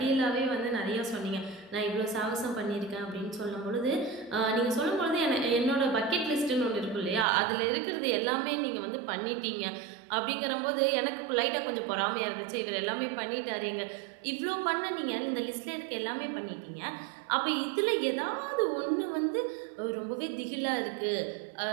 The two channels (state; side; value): drops out; left; at 7.2 s